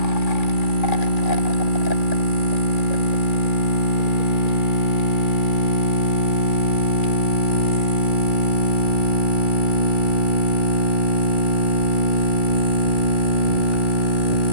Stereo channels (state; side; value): late; right; 2.0 ms